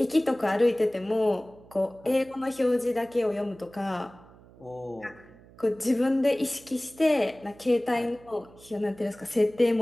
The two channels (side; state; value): right; noise; hum, 24 dB below the sound